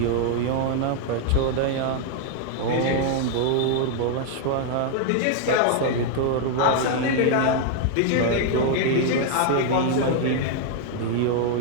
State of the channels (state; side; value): different; both; correlation 0.00